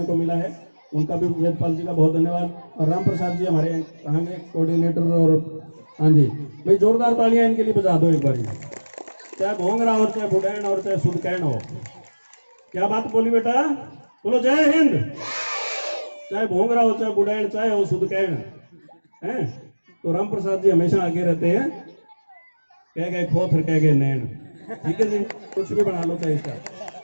को मिला है। उनका भी वेदपाल जी का बहुत धन्यवाद। और राम प्रसाद जी हमारे कहाँ के कोऑर्डिनेटर, और हाँ जी भाई जोरदार तालियां इनके लिए बजा दो एक बार, चाहे भोंगरा हो, चाहे बुडैन और चाहे सुदकैन हो। क्या बात बोली बेटा, बोलो जय हिंद। चाहे भोंगरा हो, चाहे बुडैन, चाहे हो सुदकैन है, तो राम प्रसाद जी हमेशा आगे रहते हैं, कह गए खोथर कह गए नैन, ठीक है जी, कुछ भी बना लो चाहे इसका,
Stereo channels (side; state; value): both; inverted; correlation -1.00